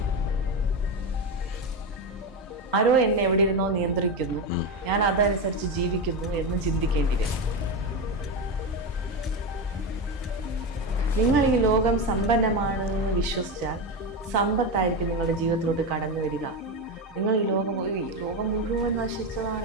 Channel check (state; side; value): normal; both; correlation 0.15